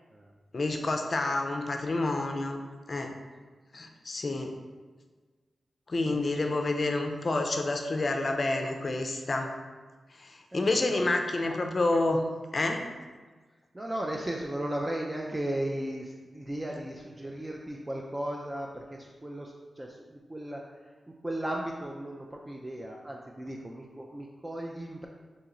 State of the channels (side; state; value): both; normal; correlation 0.93